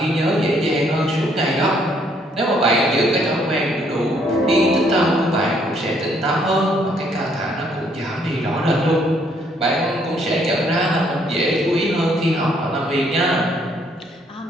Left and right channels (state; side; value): normal; both; correlation 0.67